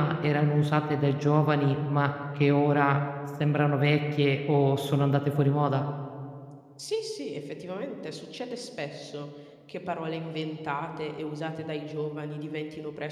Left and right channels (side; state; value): both; identical; correlation 1.00